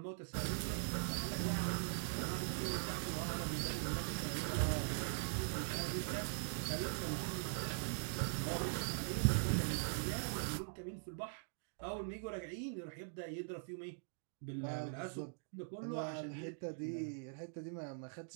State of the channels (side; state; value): left; silent; digital silence